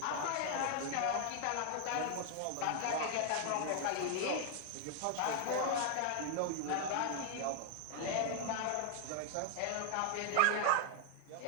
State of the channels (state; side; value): different; both; correlation 0.00